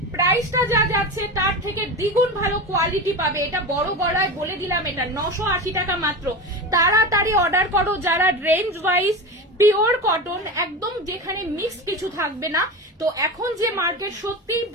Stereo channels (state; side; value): normal; both; correlation 0.25